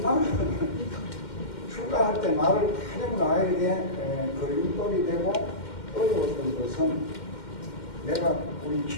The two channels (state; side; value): late; right; 2.1 ms